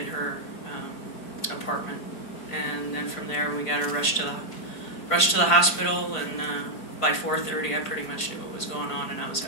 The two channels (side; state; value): right; late; 4.5 ms